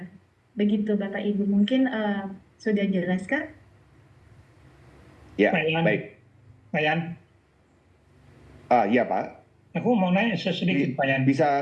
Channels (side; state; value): both; identical; correlation 1.00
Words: Begitu Bapak Ibu. Mungkin sudah jelas kan? Ya, Pak Yan, baik. Pak Yan, Iya Pak, aku mau nanya sedikit Pak Yan.